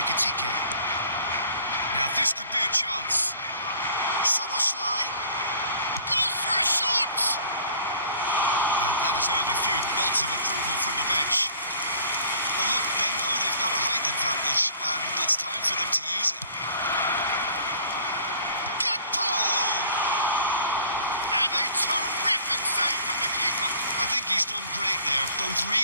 Now this could be a chance. Soboslai goes for a shot! And that has earned a few nods of approval from the bench. Well, look, they know they've got a height advantage, and it's time for them to use it. And a terrific save from the keeper. I think he's done great there, both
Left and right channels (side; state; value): both; inverted; correlation -0.51